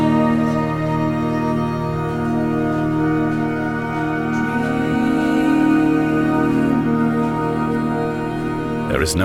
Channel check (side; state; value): both; identical; correlation 1.00